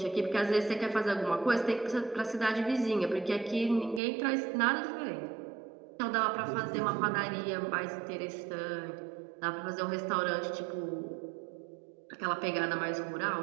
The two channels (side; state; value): left; drops out; at 4.0 s